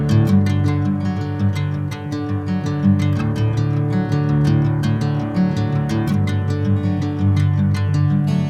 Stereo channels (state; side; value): identical; both; correlation 1.00